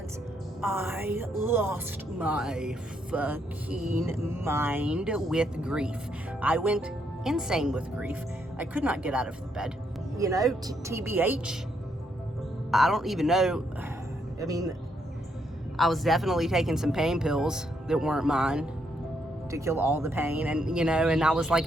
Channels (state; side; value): normal; both; correlation 0.75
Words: I lost my fucking mind with grief. I went insane with grief. I could not get out of the bed. You know, TBH, I don't even know. I mean, I was definitely taking some pain pills that weren't mine to kill all the pain, and you know, and I was like,